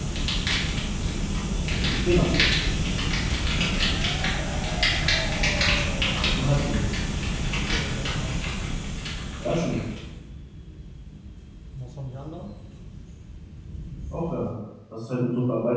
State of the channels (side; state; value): both; identical; correlation 1.00